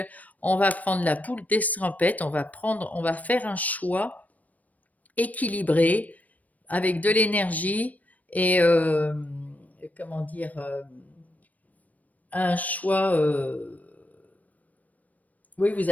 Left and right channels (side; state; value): right; late; 0.074 ms